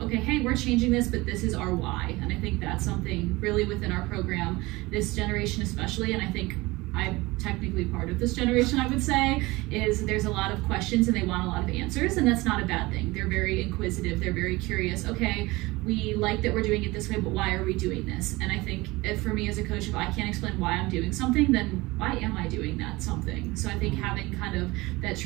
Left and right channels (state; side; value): quieter; left; 21.6 dB